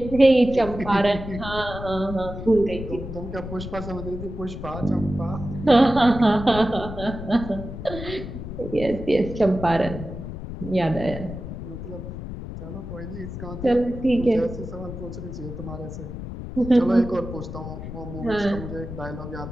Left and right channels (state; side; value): noise; left; rumble, 9 dB below the sound